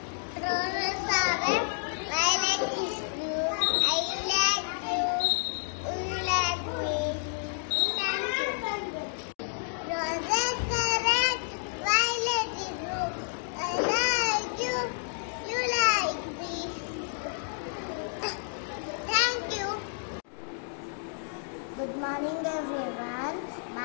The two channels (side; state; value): right; silent; digital silence